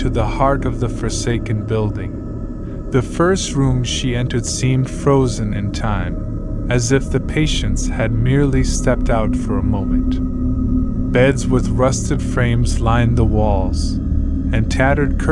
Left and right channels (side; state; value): both; identical; correlation 1.00